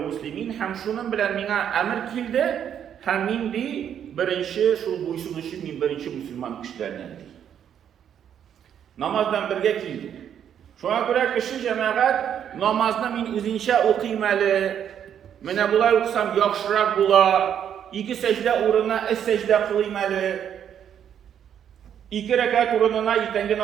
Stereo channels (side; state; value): left; quieter; 9.1 dB